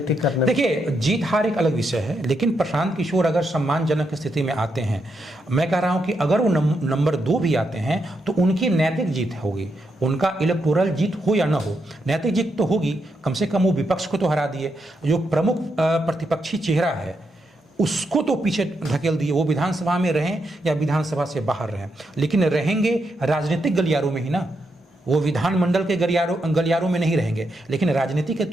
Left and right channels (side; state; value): both; normal; correlation 0.82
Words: करने में। देखिए, जीत हार एक अलग विषय है, लेकिन प्रशांत किशोर अगर सम्मानजनक स्थिति में आते हैं, मैं कह रहा हूं कि अगर वो नंबर 2 भी आते हैं तो उनकी नैतिक जीत होगी। उनका इलेक्टोरल जीत हो या ना हो, नैतिक जीत तो होगी। कम से कम वो विपक्ष को तो हरा दिए, जो प्रमुख प्रतिपक्षी चेहरा है उसको तो पीछे ढकेल दिए। वो विधानसभा में रहें या विधानसभा से बाहर रहें, लेकिन रहेंगे राजनीतिक गलियारों में ही ना। वो विधानमंडल के गलियारों में नहीं रहेंगे, लेकिन राजनीति के